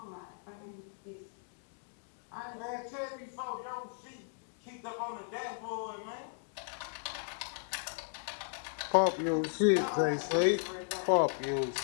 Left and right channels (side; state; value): right; silent; digital silence